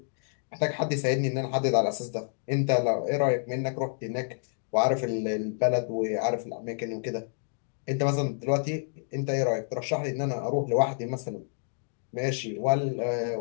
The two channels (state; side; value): silent; right; digital silence